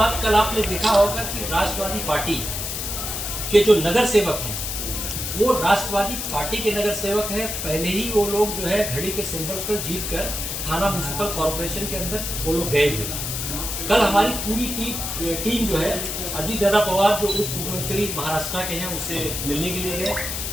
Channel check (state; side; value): noise; left; hiss, 4 dB below the sound